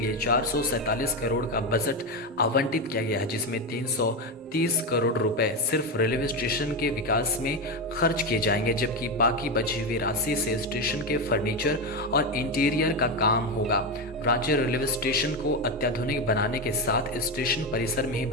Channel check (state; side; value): normal; both; correlation 0.13